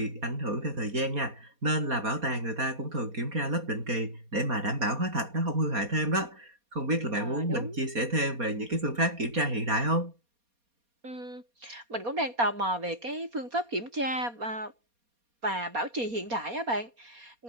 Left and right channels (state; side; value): late; left; 4.2 ms